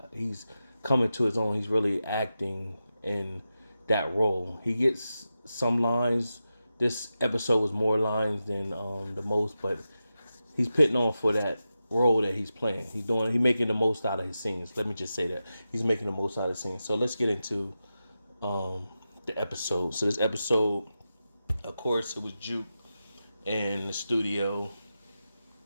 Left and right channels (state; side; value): inverted; both; correlation -0.91